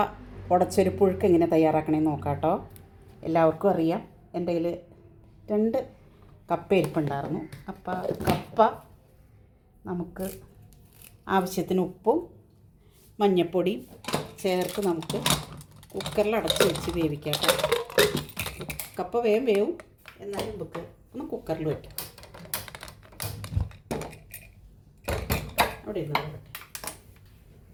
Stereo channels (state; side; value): identical; both; correlation 1.00